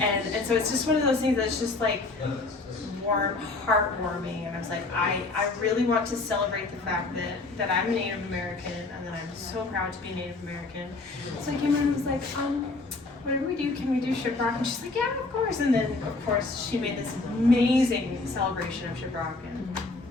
so it's just one of those things that's just like warm, heartwarming. And I was like, I really want to celebrate the fact that I'm Native American and that I'm so proud to be Native American. So I came in and was like, whatever we do, can we do shiprock? And she's like, yeah, of course. And then of course she made this amazing celebration of shiprock, and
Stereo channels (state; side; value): quieter; right; 3.4 dB